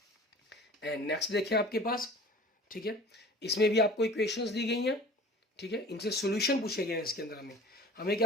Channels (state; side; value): normal; both; correlation 0.43